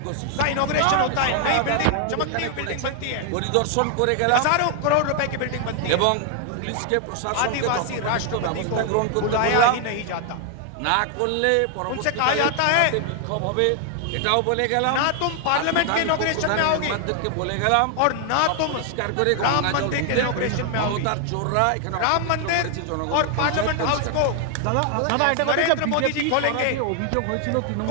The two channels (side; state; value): both; different; correlation 0.00